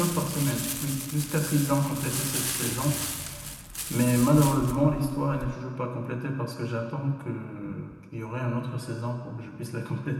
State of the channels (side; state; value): both; identical; correlation 1.00